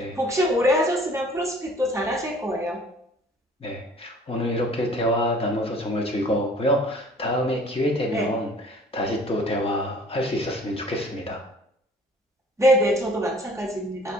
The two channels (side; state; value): both; normal; correlation 0.52